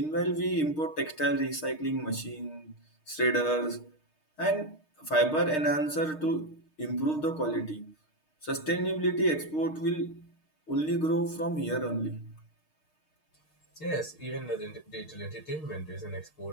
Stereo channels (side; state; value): right; late; 6.5 ms